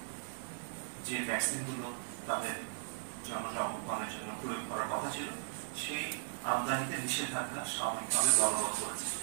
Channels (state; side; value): silent; left; 53 dB below the other